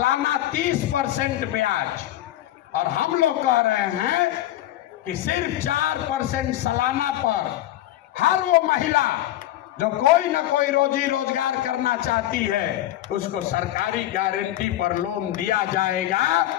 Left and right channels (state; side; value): quieter; right; 13.9 dB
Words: 30% ब्याज। और हम लोग कह रहे हैं कि सिर्फ 4% सालाना पर हर वो महिला जो कोई ना कोई रोजी रोजगार करना चाहती है उसको सरकारी गारंटी पर लोन दिया जाएगा